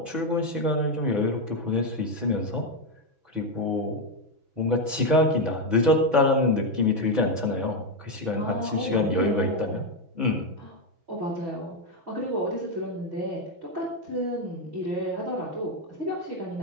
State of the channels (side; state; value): left; late; 6.1 ms